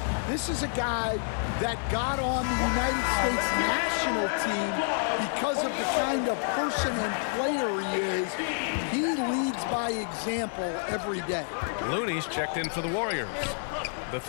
This is a guy that got on the United States national team because of the kind of person and player he is. He leads by example every day. Looney's checked in for the Warriors. The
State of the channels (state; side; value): silent; right; digital silence